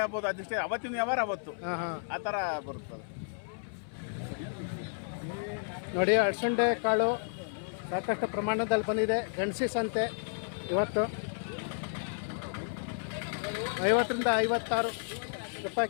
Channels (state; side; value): silent; right; 56 dB below the other